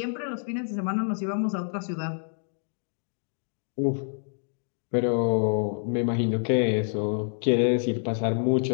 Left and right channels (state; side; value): silent; right; digital silence